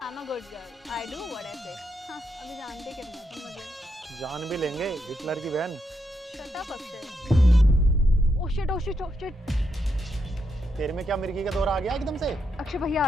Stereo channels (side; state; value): both; normal; correlation 0.81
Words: I'm a good girl. I do what I say. हाँ, अभी जानते कितना तुम मुझे। जान भी लेंगे हिटलर की बहन। Shut up Akshay. Oh shit. तेरे में क्या मिर्गी का दौरा आ गया एकदम से? अक्षय भैया